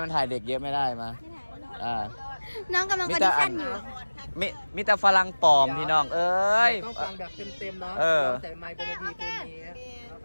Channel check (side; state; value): both; inverted; correlation -1.00